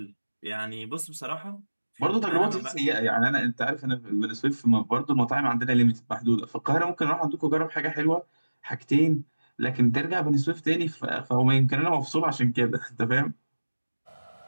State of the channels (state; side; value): inverted; both; correlation -1.00